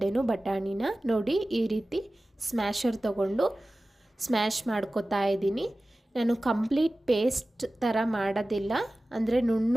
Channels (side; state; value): both; normal; correlation 0.96